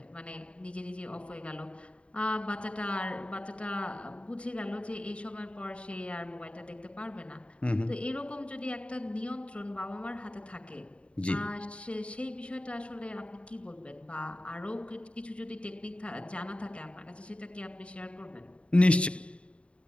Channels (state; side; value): late; right; 0.060 ms